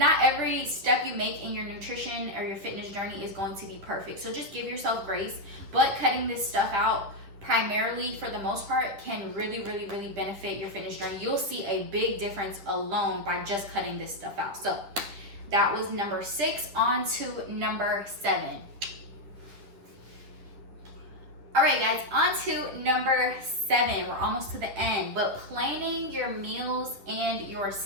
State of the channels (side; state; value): left; late; 10 ms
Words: every step you make in your nutrition or your fitness journey is going to be perfect. So just give yourself grace. But cutting this stuff out, primarily for the most part, can really, really, really benefit your fitness journey. You'll see a big difference alone by just cutting this stuff out. So that was number 6. On to number 7. All right, guys, on to number 7. We're almost to the end, but planning your meals and your